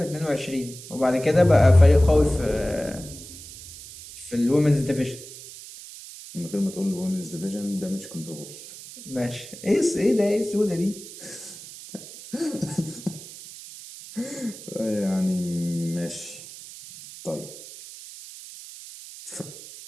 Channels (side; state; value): right; noise; hiss, 15 dB below the sound